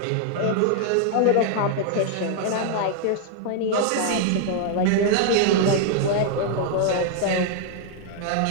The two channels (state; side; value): different; both; correlation 0.00